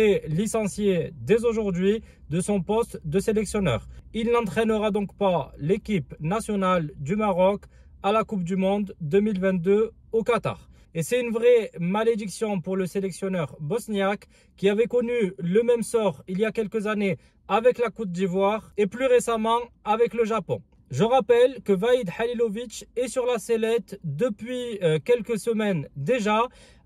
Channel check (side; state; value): both; identical; correlation 1.00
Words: licencié dès aujourd'hui de son poste de sélectionneur. Il n'entraînera donc pas l'équipe nationale du Maroc à la Coupe du Monde 2022 au Qatar. Et c'est une vraie malédiction pour le sélectionneur bosniaque qui avait connu le même sort il y a quelques années avec la Côte d'Ivoire et plus récemment avec le Japon. Je rappelle que Vahid Halilovic est sur la sellette depuis quelques semaines déjà.